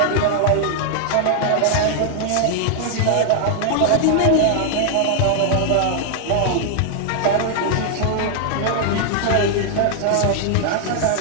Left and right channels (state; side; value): different; both; correlation 0.00